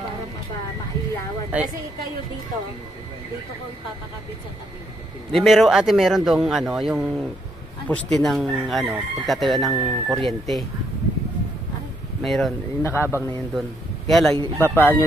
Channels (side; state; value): both; normal; correlation 0.73